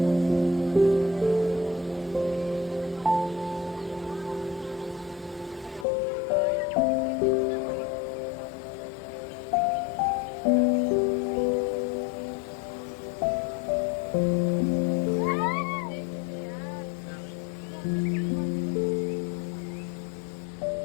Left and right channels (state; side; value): drops out; right; at 5.9 s